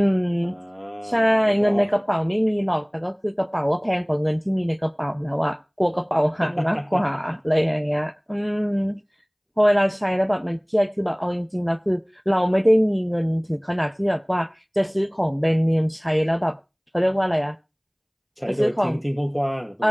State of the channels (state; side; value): identical; both; correlation 1.00